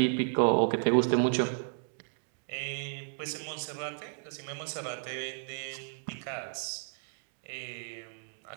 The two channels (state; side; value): silent; left; digital silence